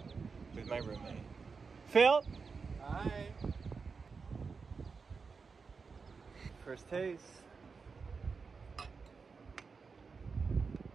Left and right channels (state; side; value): quieter; left; 5.0 dB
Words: with my roommate. Phil! Hi. First taste.